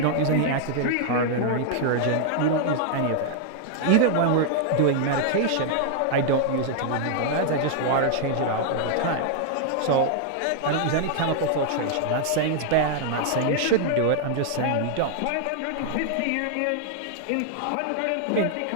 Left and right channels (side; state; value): both; different; correlation -0.01